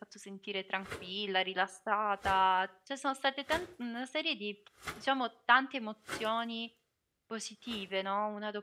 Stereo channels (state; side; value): identical; both; correlation 1.00